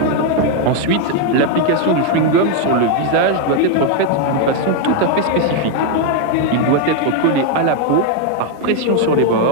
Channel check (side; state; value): both; different; correlation 0.01